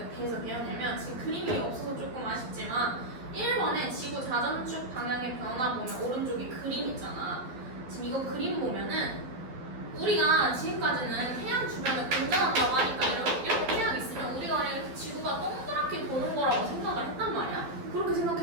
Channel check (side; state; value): left; late; 12 ms